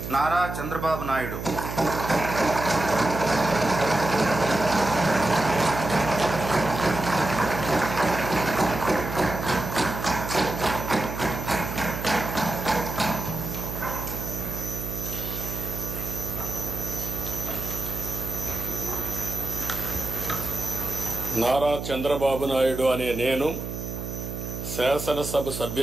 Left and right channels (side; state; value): right; noise; hum, 6 dB below the sound